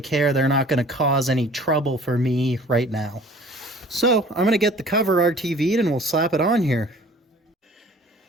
They're not going to cause any trouble for me right now. So I'm going to get the cover RTV'd and we'll slap it on here.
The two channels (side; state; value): both; normal; correlation 0.49